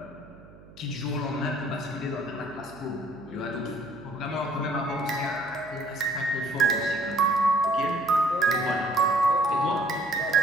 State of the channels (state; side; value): noise; right; hum, 22 dB below the sound